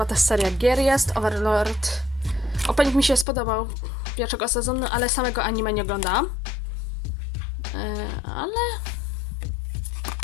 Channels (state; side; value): drops out; right; at 3.2 s